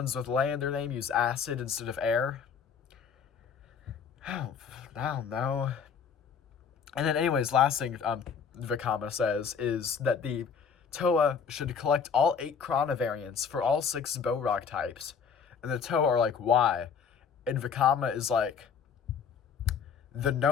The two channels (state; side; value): quieter; right; 6.6 dB